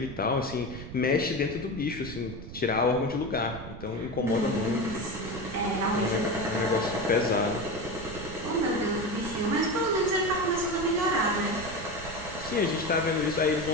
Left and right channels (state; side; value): noise; right; rumble, 11 dB below the sound